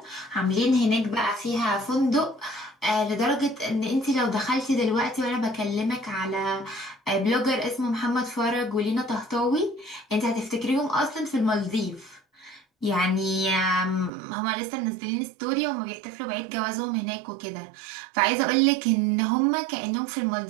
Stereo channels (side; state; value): left; drops out; at 14.1 s